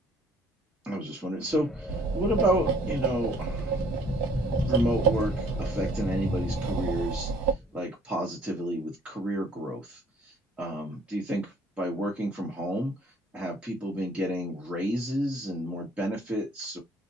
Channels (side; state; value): both; normal; correlation 0.58